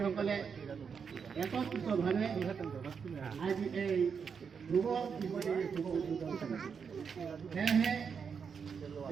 একত্রিতভাৱে আজি এই শুভ দিৱসৰ শুভ উদ্বোধন কৰিছে। সেয়েহে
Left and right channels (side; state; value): left; quieter; 6.3 dB